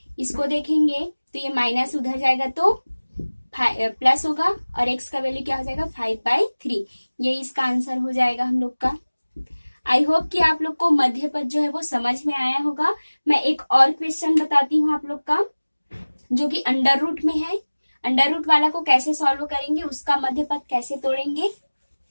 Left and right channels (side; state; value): both; inverted; correlation -1.00